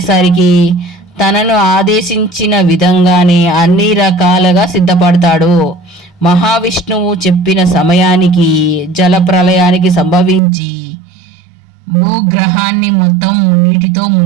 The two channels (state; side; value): drops out; left; at 10.4 s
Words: తనను ఆదేశించిన విధంగానే అన్ని రకాలుగా సిద్ధపడతాడు. మహావిష్ణువు చెప్పిన సమయానికి జల ప్రళయానికి సంభవించి భూగ్రహాన్ని మొత్తం నీటితో